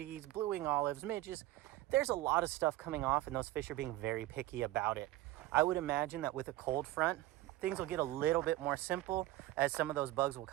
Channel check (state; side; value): quieter; left; 16.5 dB